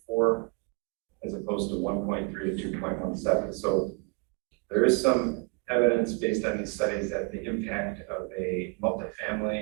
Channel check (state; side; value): quieter; left; 33.4 dB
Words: as opposed to 1.3 to 2.17. So there is some evidence based on these studies that the impact of a